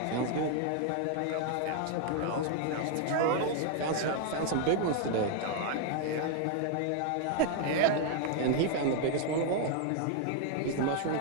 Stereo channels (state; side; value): different; both; correlation 0.00